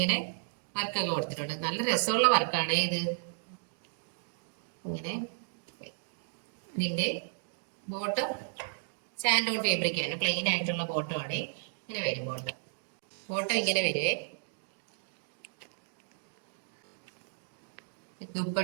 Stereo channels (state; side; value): silent; left; digital silence